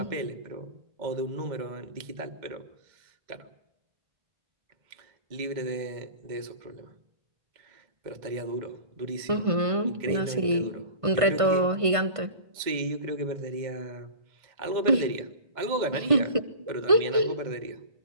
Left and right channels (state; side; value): late; left; 1.5 ms